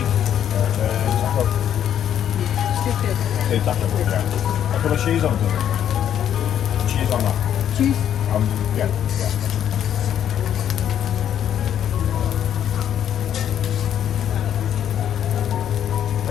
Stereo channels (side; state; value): right; quieter; 9.8 dB